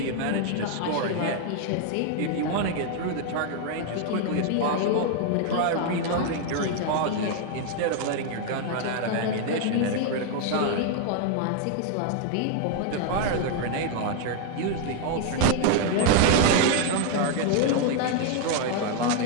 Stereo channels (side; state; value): both; different; correlation 0.00